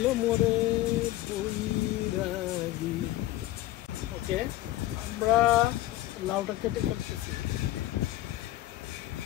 মোরে বৈরাগী। ওকে, আমরা লাউটা কেটে ফেলতেছি।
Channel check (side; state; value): right; quieter; 15.4 dB